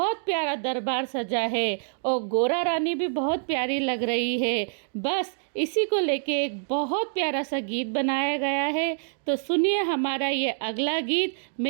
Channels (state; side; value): silent; left; digital silence